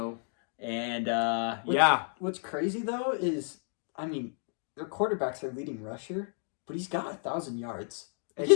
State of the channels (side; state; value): right; silent; 57 dB below the other